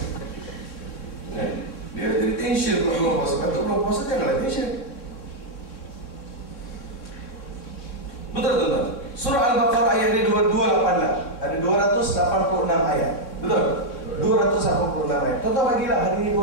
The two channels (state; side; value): late; right; 3.6 ms